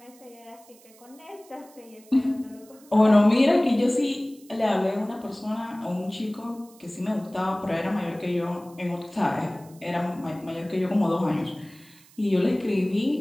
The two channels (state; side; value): noise; right; hiss, 26 dB below the sound